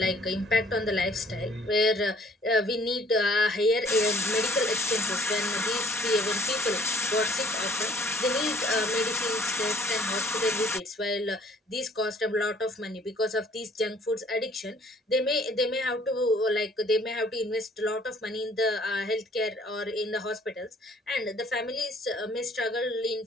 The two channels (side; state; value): both; normal; correlation 0.58